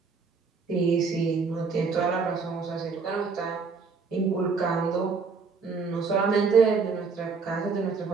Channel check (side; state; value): left; quieter; 4.9 dB